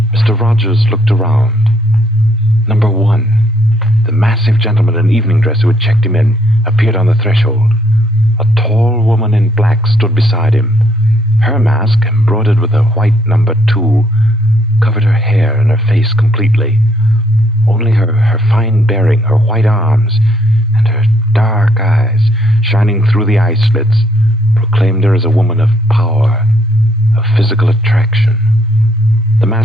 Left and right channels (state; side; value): normal; both; correlation 0.69